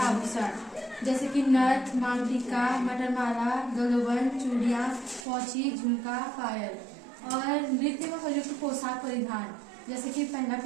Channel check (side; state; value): left; drops out; at 5.2 s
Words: आभूषण जैसे कि नथ, मांग टीका, मटरमाला, गलोबन, चूड़ियाँ, पोंची, झुमका, पायल। और नृत्य में प्रयुक्त पोशाक परिधान जैसे कि पहना